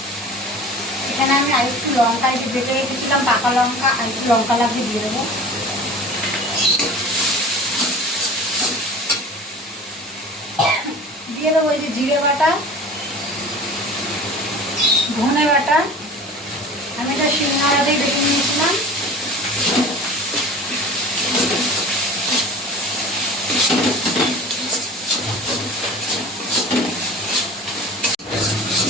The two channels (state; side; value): normal; both; correlation 0.39